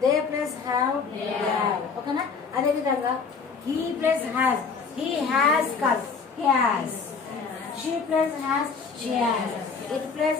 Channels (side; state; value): right; quieter; 5.3 dB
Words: they plus have, they have. ఓకేనా. అదే విధంగా he plus has, he has కాదు he has, she plus has, she has, it plus